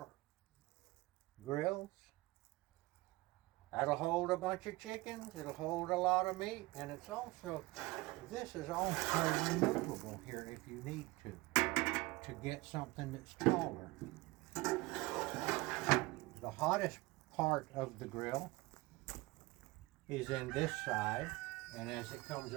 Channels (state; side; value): quieter; left; 21.7 dB